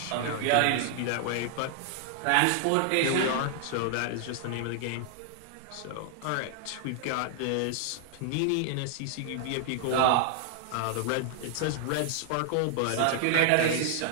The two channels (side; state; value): both; different; correlation -0.01